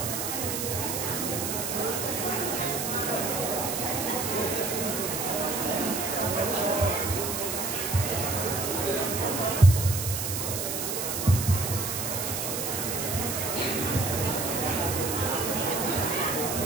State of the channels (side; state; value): right; noise; hiss, 2 dB below the sound